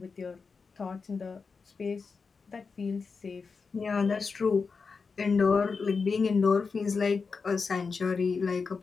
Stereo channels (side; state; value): right; quieter; 4.9 dB